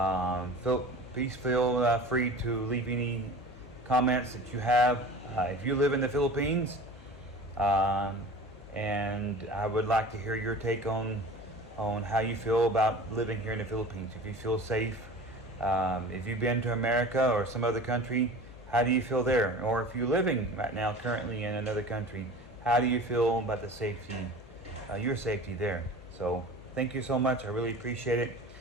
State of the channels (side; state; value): left; noise; hum, 19 dB below the sound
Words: feel free to leave any comments that you have. If you live in the Philippines, um, and I would like to hear your take on how you feel about living here in the Philippines. If you feel safe, if you've been to America or some other country, how do you feel there? Or if you're living right now currently in another country, how do you feel about the safety, your safety there? So thank you so much. I really appreciate it.